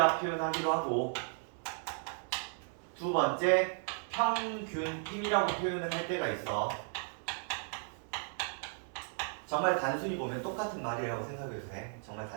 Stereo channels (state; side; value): silent; left; 54 dB below the other